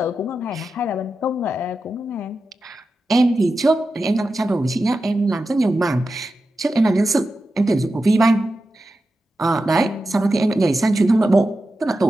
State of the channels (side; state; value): both; normal; correlation 0.91